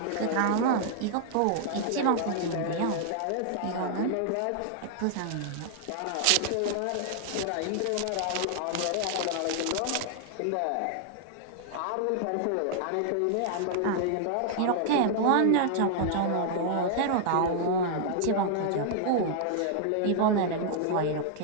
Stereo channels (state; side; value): different; both; correlation 0.00